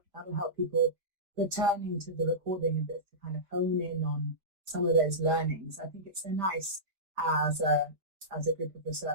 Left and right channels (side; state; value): left; late; 5.1 ms